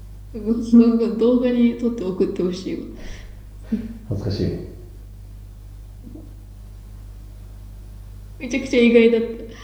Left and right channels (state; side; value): identical; both; correlation 1.00